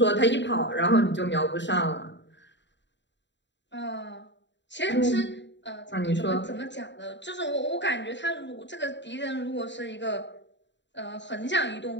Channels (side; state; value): right; late; 0.52 ms